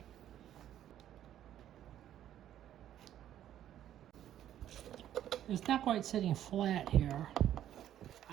It's not quite sitting flat here.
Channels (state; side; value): quieter; left; 11.4 dB